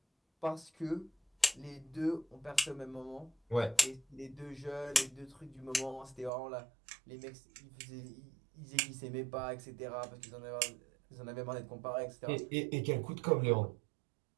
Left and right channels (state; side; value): drops out; left; at 6.3 s